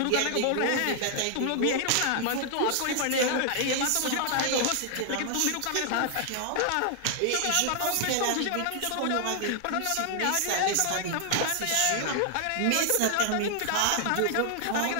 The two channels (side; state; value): both; different; correlation 0.00